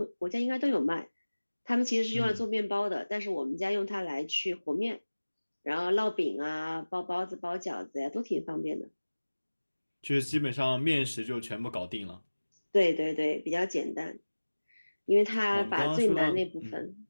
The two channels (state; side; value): inverted; both; correlation -1.00